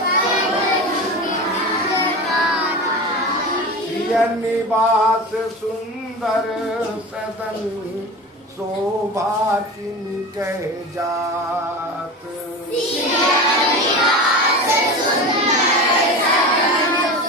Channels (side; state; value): both; normal; correlation 0.29